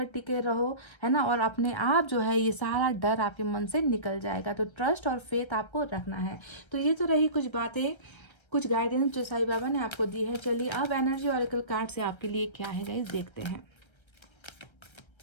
टिके रहो, है ना, और अपने आप जो है ये सारा डर आपके मन से निकल जाएगा। तो ट्रस्ट और फेथ आपको रखना है। तो ये तो रही कुछ बातें, कुछ गाइडेंस जो साईं बाबा ने आपको दी है। चलिए अब एनर्जी ऑरेकल कार्ड से आपके लिए क्या है गाइस, देखते हैं।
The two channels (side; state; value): right; late; 1.3 ms